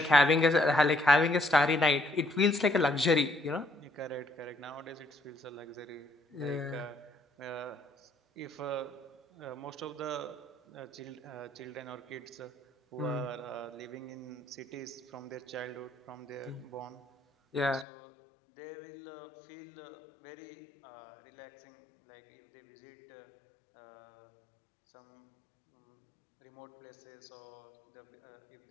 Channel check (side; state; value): right; drops out; at 17.9 s